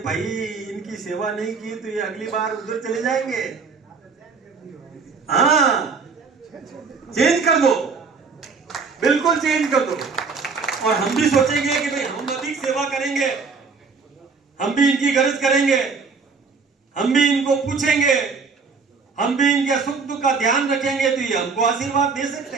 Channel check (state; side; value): quieter; left; 5.0 dB